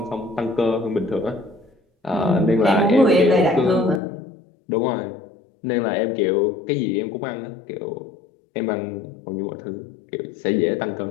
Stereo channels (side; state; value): right; drops out; at 4.0 s